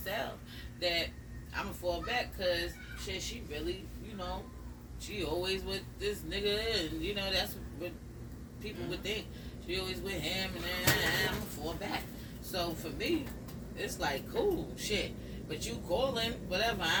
that I'm going to fall back because, shit, she really, she always with this nigga and, that's what people would think. She always with him and then I'm going to fall back. So for me, it's like, cool, shit. But you calling, whatever,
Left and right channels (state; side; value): identical; both; correlation 1.00